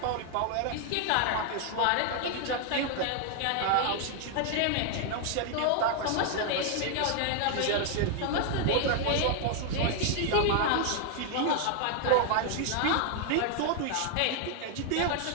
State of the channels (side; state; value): both; different; correlation 0.00